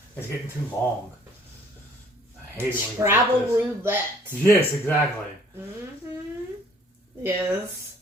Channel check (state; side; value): normal; both; correlation 0.57